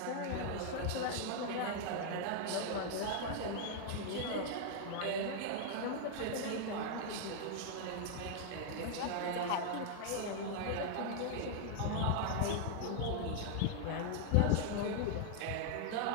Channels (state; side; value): different; both; correlation 0.00